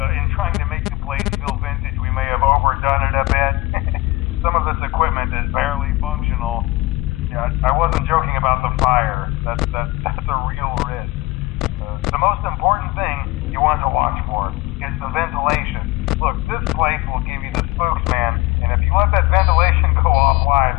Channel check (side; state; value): right; quieter; 20.7 dB